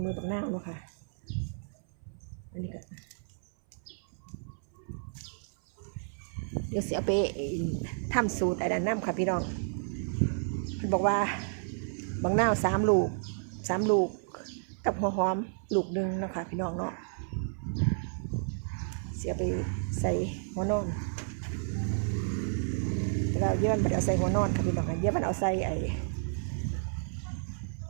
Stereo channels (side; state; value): left; silent; 57 dB below the other